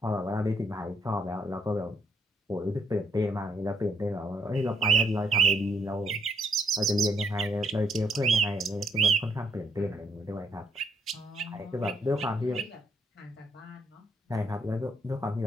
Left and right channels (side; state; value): both; normal; correlation 0.72